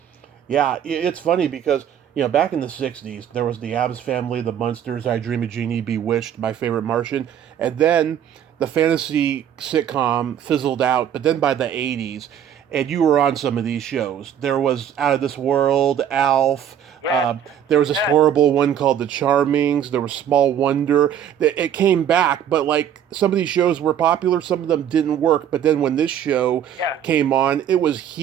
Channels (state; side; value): quieter; left; 9.4 dB